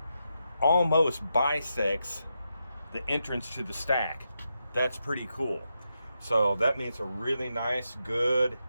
almost bisects the entrance to the stack. That's pretty cool. So that means a really nice, good,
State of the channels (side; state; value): both; inverted; correlation -0.86